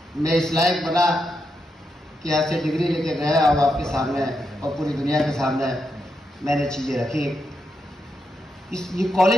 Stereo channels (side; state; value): both; normal; correlation 0.84